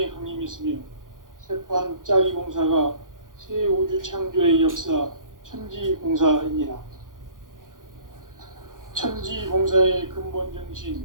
강림했으며 새판짜기 공사가 새 우주 창조의 역사 천지공사입니다. 천지공사의 근본 정신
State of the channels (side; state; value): left; late; 0.89 ms